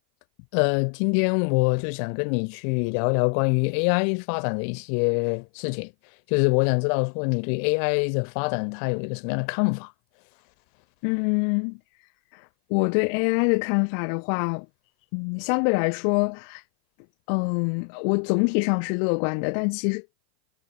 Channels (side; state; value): right; silent; 57 dB below the other